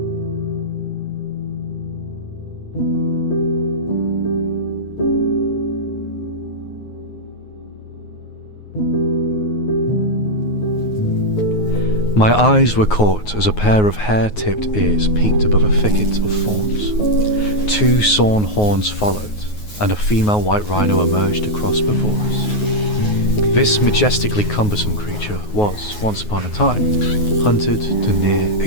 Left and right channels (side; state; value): right; late; 9.5 ms